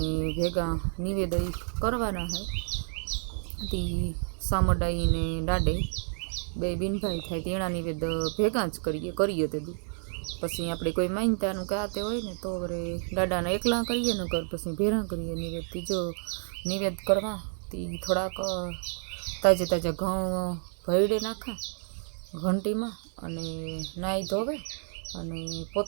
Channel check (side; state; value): left; silent; 55 dB below the other